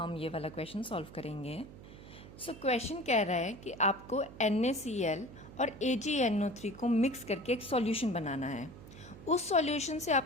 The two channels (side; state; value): right; noise; hum, 17 dB below the sound